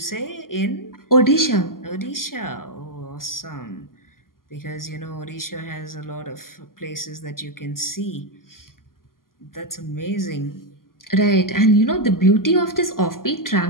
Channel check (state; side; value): late; right; 0.91 ms